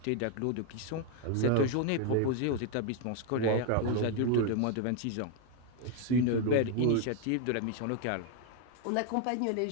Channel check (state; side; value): different; both; correlation 0.01